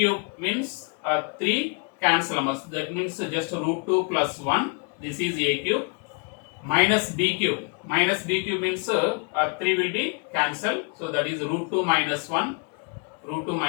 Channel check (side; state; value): right; quieter; 33.7 dB